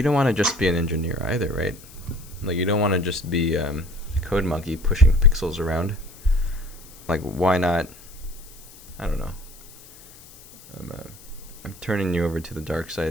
don't want to just be an engineer either, right? Like you don't want to just be a code monkey pushing pixels around. Like why not? I don't know. I'm turning you over to the dark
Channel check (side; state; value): left; noise; hiss, 21 dB below the sound